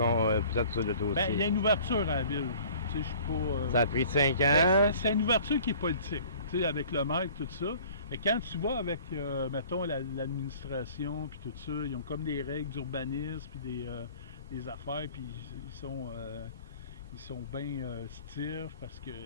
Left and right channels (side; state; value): both; inverted; correlation -0.49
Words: sur le dossier. Bien, il y a une ouverture à la ville. Tu sais, je suis pas, ça a pris 5 ans. C'est une ouverture qui est politique, tu sais, avec le maire et tout ça. Et quand tu vas avec, mettons, l'administration puis tout ça, ils ont comme des règles d'urbanisme puis des affaires, puis ils sont bien stiffs parce qu'ils